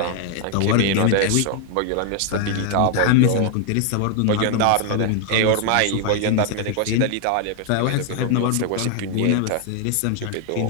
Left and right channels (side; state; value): both; different; correlation 0.00